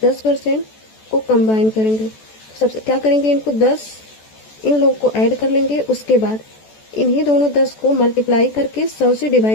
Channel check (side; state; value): right; late; 14 ms